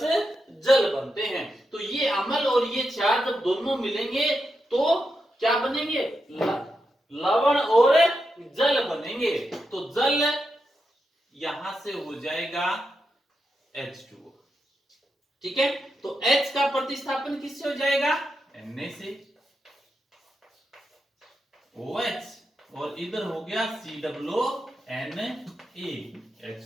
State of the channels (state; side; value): normal; both; correlation 0.86